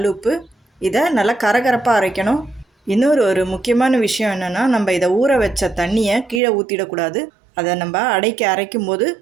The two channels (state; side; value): drops out; left; at 6.4 s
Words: இதை நல்லா கரகரப்பாக அரைக்கணும். இன்னொரு முக்கியமான விஷயம் என்னென்னா, நம்ம இதை ஊற வச்ச தண்ணியை கீழே ஊற்றிடக்கூடாது. அதை நம்ம அடைக்க அரைக்கும் போது